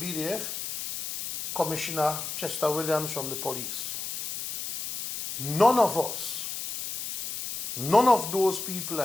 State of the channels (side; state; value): left; noise; hiss, 6 dB below the sound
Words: Commissioner Chester Williams from the police. None of us, none of those people